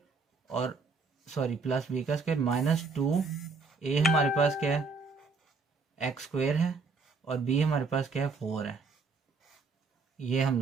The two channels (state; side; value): quieter; left; 4.3 dB